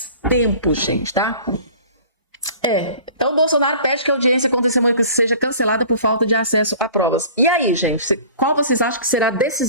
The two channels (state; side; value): inverted; both; correlation -0.46